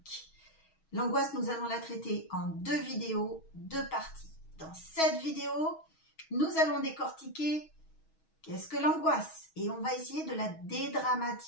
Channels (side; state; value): right; late; 6.3 ms